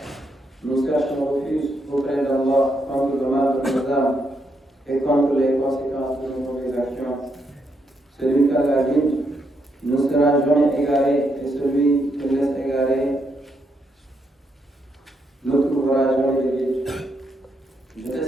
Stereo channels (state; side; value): normal; both; correlation 0.78